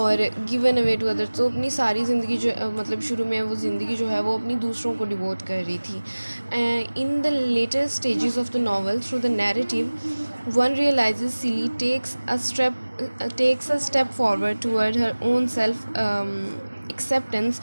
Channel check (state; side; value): inverted; both; correlation -1.00